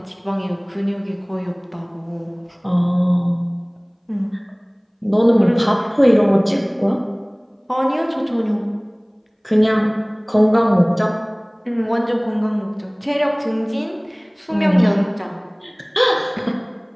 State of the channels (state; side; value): identical; both; correlation 1.00